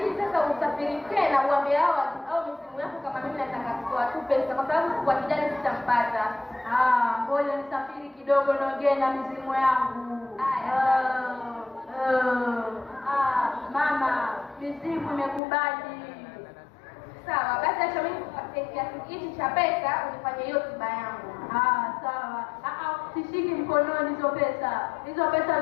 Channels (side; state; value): right; drops out; at 15.4 s